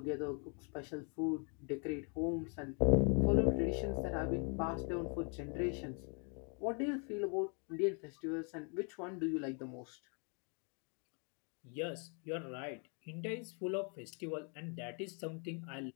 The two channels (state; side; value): quieter; right; 38.8 dB